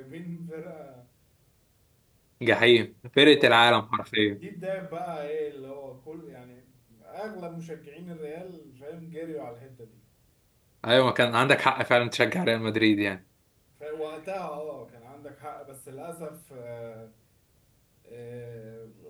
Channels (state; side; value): identical; both; correlation 1.00